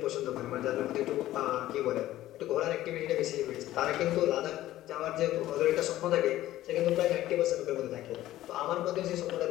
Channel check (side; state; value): right; quieter; 14.6 dB